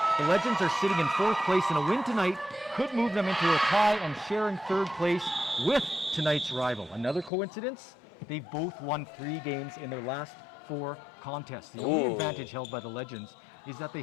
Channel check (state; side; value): drops out; right; at 7.3 s